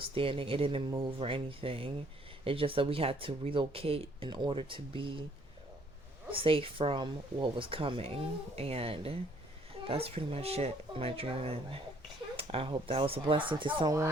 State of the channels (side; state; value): both; normal; correlation 0.63